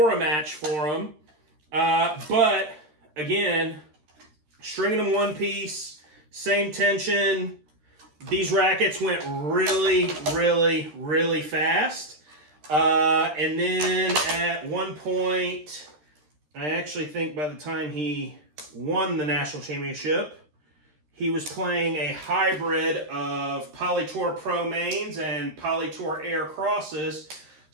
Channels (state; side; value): late; left; 13 ms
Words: a match for him. But again, stringing them one piece, same tension. These rackets went really fast. And then at one point, I actually think by the time he won the national championship, he was playing a hybrid of Poly Tour Pro mains and Poly Tour Air crosses.